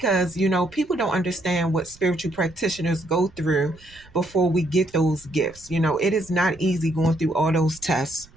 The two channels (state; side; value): noise; right; rumble, 25 dB below the sound